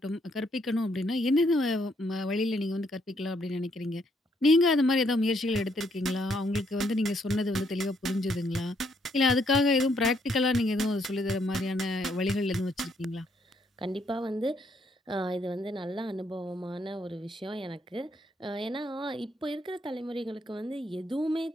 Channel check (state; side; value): normal; both; correlation 0.72